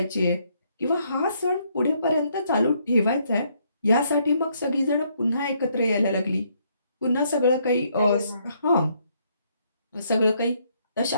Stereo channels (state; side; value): inverted; both; correlation -0.71